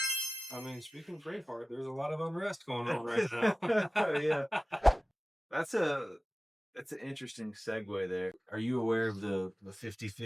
I mean, speaking of Braveheart, there's a lot of unrest going on right now. Yeah. That's an interesting segue there. Are you aware of the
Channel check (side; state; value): both; normal; correlation 0.97